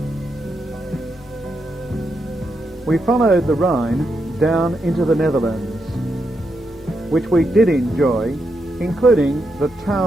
We followed the Rhine down into the Netherlands, which we did enjoy, including the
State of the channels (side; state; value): both; normal; correlation 0.83